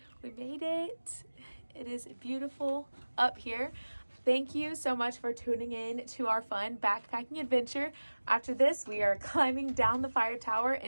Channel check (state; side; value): inverted; both; correlation -1.00